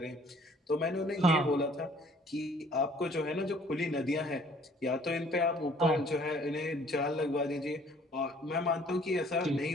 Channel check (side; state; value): both; normal; correlation 0.57